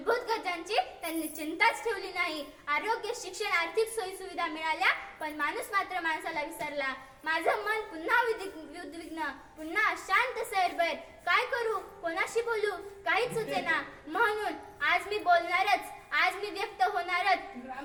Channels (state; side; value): identical; both; correlation 1.00